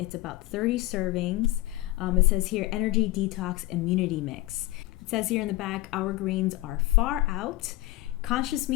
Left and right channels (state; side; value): quieter; right; 17.9 dB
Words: about 30 servings. It says here, energy detox immunity mix. It says here in the back, our greens are far out. Conscious